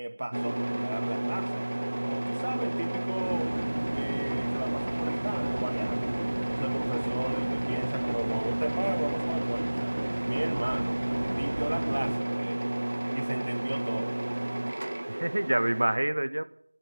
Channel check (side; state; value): both; inverted; correlation -1.00